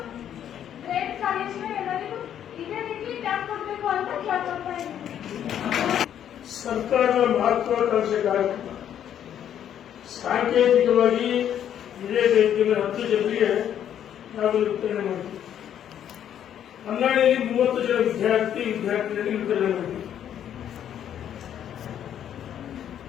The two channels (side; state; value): right; quieter; 9.9 dB